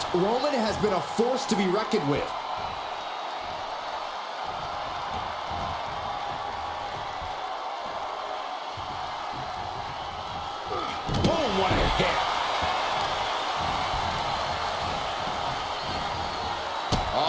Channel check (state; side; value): identical; both; correlation 1.00